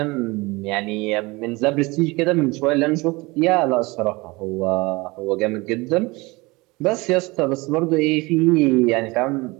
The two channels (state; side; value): quieter; left; 23.7 dB